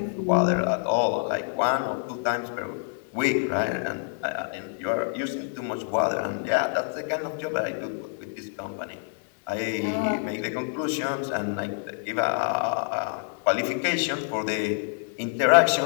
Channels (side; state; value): right; silent; digital silence